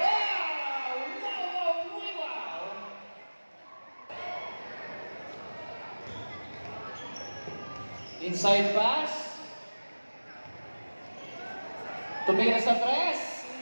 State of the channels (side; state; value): both; inverted; correlation -1.00